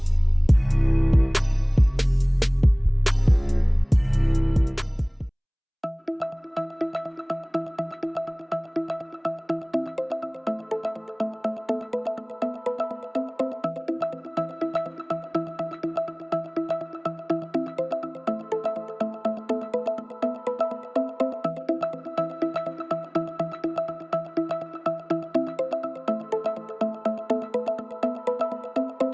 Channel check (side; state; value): both; identical; correlation 1.00